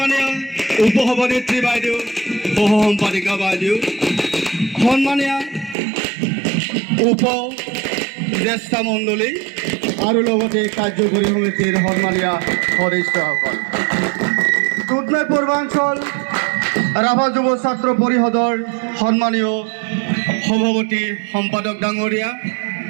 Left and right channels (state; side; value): drops out; left; at 5.8 s